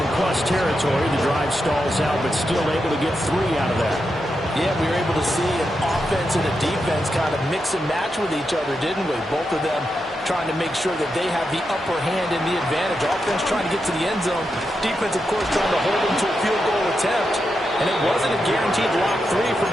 plus territory. The drive stalls out, but still able to get 3 out of that. Yeah, we were able to see an offense and a defense kind of mix and match with each other, didn't we? Both of them trying to make sure that they have the upper hand and the advantage. Offense trying to get to the end zone. Defense, of course, trying to hold them to a field goal attempt. And it wasn't a guaranteed lock 3 from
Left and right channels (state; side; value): normal; both; correlation 0.86